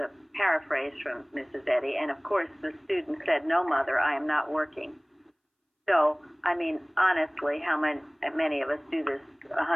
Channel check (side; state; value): both; identical; correlation 1.00